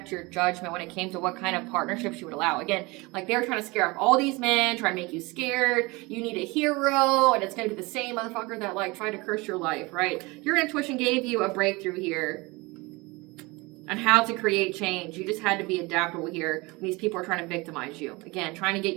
your judgment when it came to what kind of partnerships you would allow. Again, like, they're trying to scare off all these men, trying to make you scared. You need a hero, and it's going to be the same motherfucker that, like, tried to curse your life, right? Your intuition gave you a breakthrough here on how to create change. You just had to be adaptable here when these people are trying to victimize you. Again, trying to get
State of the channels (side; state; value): left; quieter; 24.4 dB